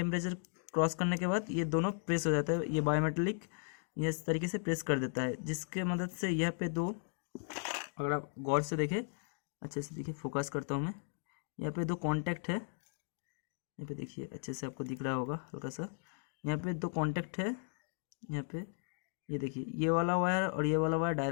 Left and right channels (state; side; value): silent; right; 54 dB below the other